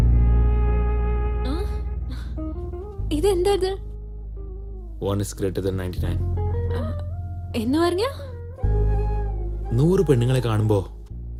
ആ, ഇതെന്താ ഇത്? 1 is greater than 99. എന്ന് പറഞ്ഞ 100 പെണ്ണുങ്ങളെ കാണുമ്പോ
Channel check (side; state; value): both; identical; correlation 1.00